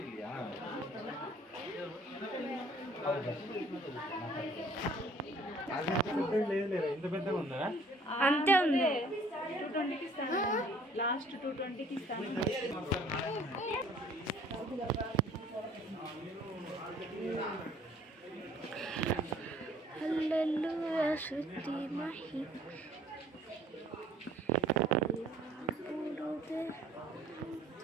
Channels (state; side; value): normal; both; correlation 0.56